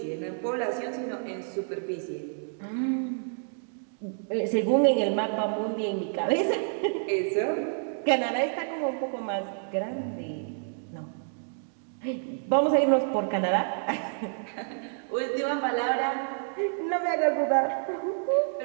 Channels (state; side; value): silent; left; digital silence